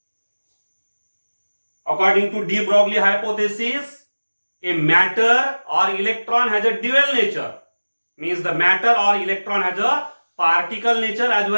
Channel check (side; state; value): both; inverted; correlation -1.00